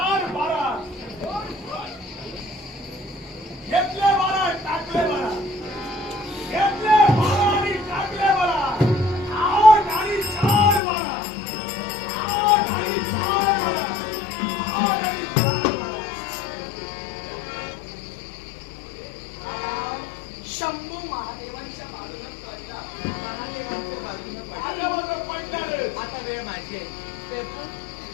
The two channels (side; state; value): right; drops out; at 10.8 s